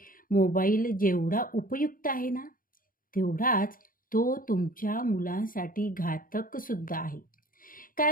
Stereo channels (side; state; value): right; late; 0.40 ms